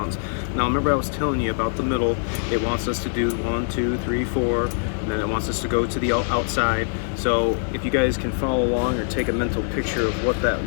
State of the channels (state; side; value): silent; right; digital silence